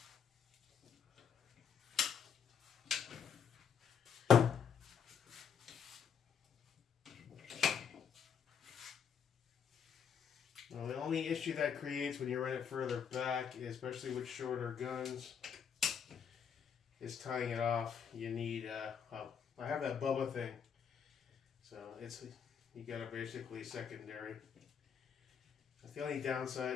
Well, the only issue that creates when you run it further back, especially with shorter guns, is tying it off. You need, oh, I have that Bubba thing. So it's, you got a basically secondary. That's the only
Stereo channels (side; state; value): right; quieter; 7.3 dB